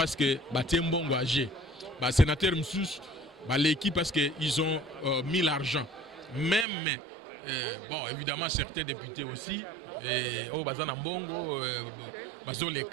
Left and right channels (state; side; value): drops out; left; at 6.7 s